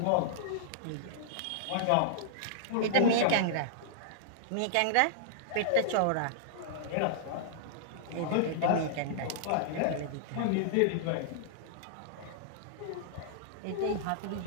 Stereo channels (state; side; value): different; both; correlation -0.01